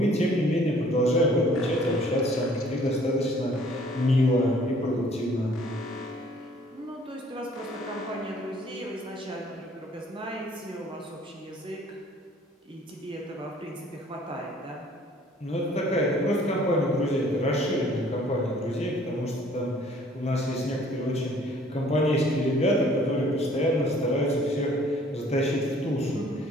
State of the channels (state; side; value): normal; both; correlation 0.57